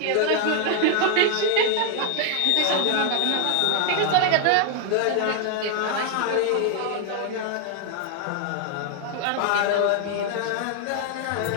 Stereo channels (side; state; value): both; different; correlation 0.00